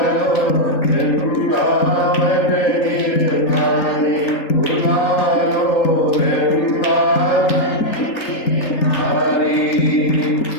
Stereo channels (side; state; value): right; late; 3.8 ms